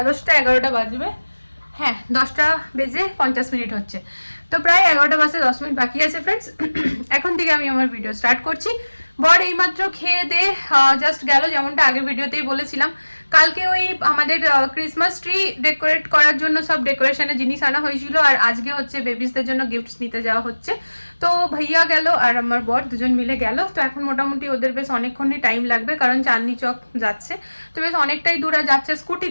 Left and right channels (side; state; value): both; inverted; correlation -1.00